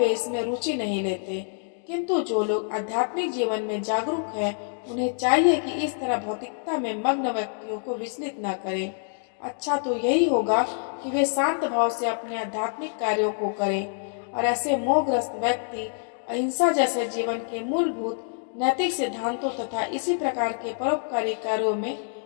इसमें रुचि नहीं लेते। किंतु जो लोग आध्यात्मिक जीवन में जागरूक हैं, उन्हें चाहिए कि इस तरह भौतिकता में मग्न व्यक्तियों को विचलित न करें। अच्छा तो यही होगा कि वे शांत भाव से अपने आध्यात्मिक कार्यों को करें, और ऐसे मोहग्रस्त व्यक्ति अहिंसा जैसे जीवन के मूलभूत नैतिक सिद्धांतों तथा इसी प्रकार के परोपकारी कार्यों में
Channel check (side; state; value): right; silent; digital silence